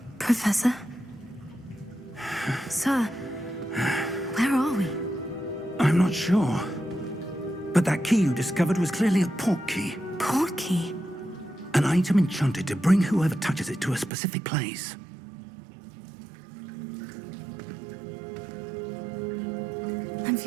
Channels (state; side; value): drops out; left; at 14.1 s